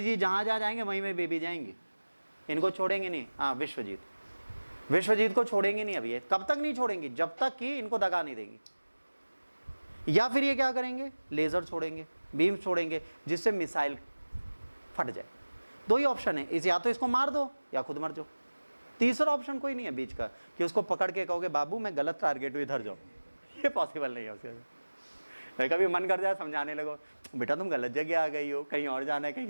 जहाँ जहाँ जाएंगे वहीं में बेबी जाएंगे, इनको छोड़ेंगे नहीं। हाँ, विश्वजीत, विश्वजीत को छोड़ेंगे नहीं अभी। कब तक नहीं छोड़ेंगे, जब तक कि इनको दगा नहीं देंगे। या फिर ये क्या करेंगे, लेजर छोड़ेंगे, बीम छोड़ेंगे, जिससे मिसाइल फट जाए। दो ही ऑप्शन है, इस या तो इसको मार दो या खुद मर जाओ, तीसरा ऑप्शन कोई नहीं है बीच का कि उसको पकड़ के कहोगे बाबू मैं गलत टारगेट हूँ इधर जाओ, ये पॉसिबल नहीं है उसके। कभी मन कर जाए समझाने लगो बेटा तुम गलत जगह आ गई हो, कहीं और जाना है,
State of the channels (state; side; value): inverted; both; correlation -1.00